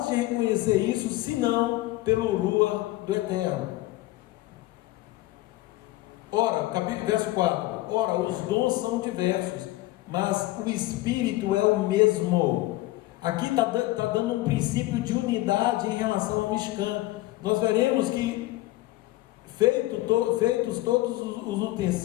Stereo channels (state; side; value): quieter; right; 17.7 dB